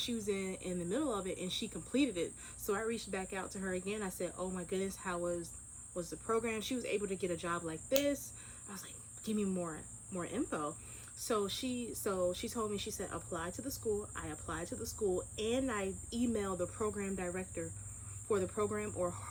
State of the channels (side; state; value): both; identical; correlation 1.00